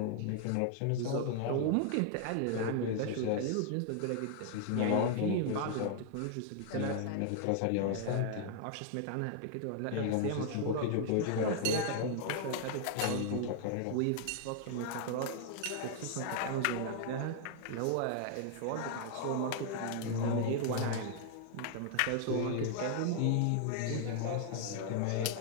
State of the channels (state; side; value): different; both; correlation 0.00